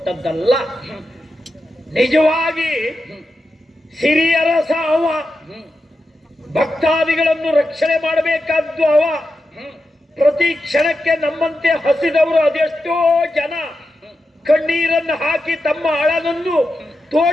ನಿಜವಾಗಿ ಸಿರಿಯರಸ ಅವ, ಭಕ್ತಾದಿಗಳನ್ನು ರಕ್ಷಣೆ ಮಾಡಬೇಕಾದ್ದು ಅವ. ಪ್ರತಿ ಕ್ಷಣಕ್ಕೆ ನಮ್ಮಂತೆ ಹಸಿದವರು ಅದೆಷ್ಟೋ ಜನ ಕಣ್ಣೀರನ್ನು ಹಾಕಿ ತಮ್ಮ ಅಳನನ್ನು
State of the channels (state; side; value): normal; both; correlation 0.89